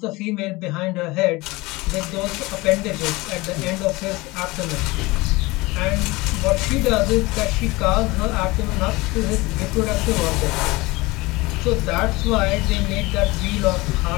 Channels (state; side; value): quieter; right; 22.2 dB